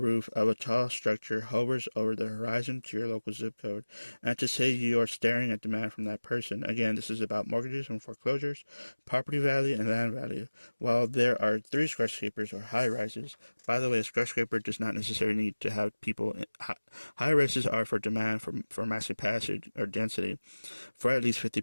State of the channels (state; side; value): inverted; both; correlation -1.00